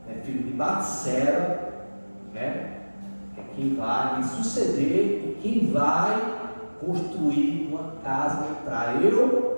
filho de Batseba, né, é quem vai me suceder e quem vai construir uma casa para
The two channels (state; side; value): inverted; both; correlation -1.00